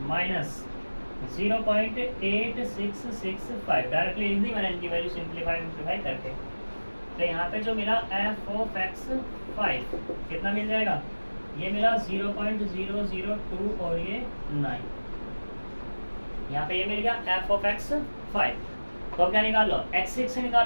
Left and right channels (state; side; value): inverted; both; correlation -1.00